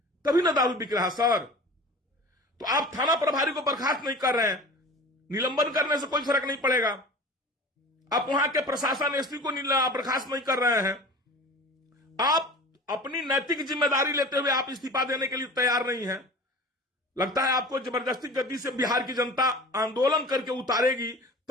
तभी ना दारू बिक रहा सर। तो आप थाना प्रभारी को बर्खास्त नहीं कर रहे हैं, निलंबन करने से कोई फर्क नहीं पड़ेगा। आप वहां के प्रशासन एसपी को बर्खास्त नहीं कर रहे हैं। आप अपनी नैतिक जिम्मेदारी लेते हुए आप इस्तीफा देने के लिए तैयार नहीं हैं। लगता है आपको जबरदस्ती गद्दी से बिहार की जनता आंदोलन करके उतारेगी,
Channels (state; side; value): normal; both; correlation 0.38